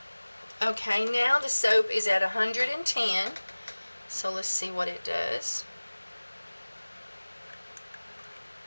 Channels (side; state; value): both; inverted; correlation -1.00